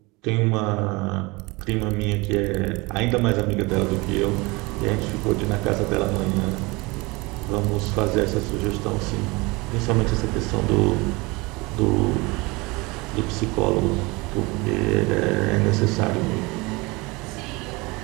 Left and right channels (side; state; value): left; quieter; 24.7 dB